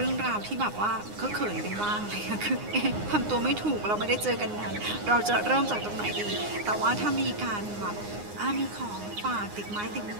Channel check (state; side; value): late; left; 9.7 ms